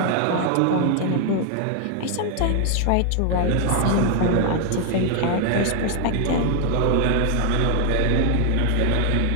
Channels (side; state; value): both; different; correlation 0.00